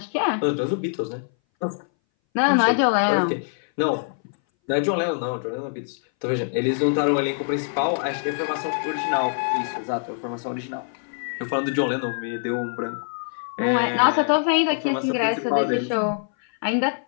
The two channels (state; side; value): silent; right; 60 dB below the other